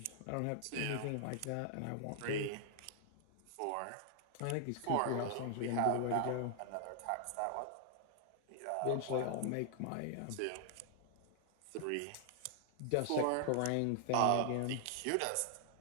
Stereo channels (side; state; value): both; different; correlation 0.00